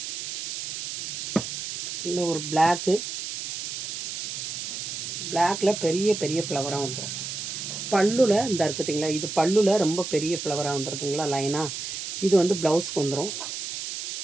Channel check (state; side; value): noise; right; hiss, 6 dB below the sound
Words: இல்லை ஒரு பிளாக்கு, பிளாக்கில் பெரிய பெரிய ஃப்ளவராக வந்துடும். பல்லுல இந்த இருக்குதுங்களா, இது பல்லுல ரொம்ப பெரிய ஃப்ளவராக வந்துடுதுங்களா லைனாக. இது வந்து ப்ளவுஸ்க்கு வந்துடும்.